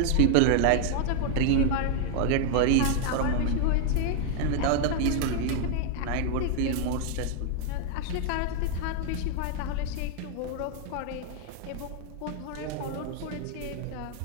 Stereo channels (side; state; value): both; different; correlation 0.00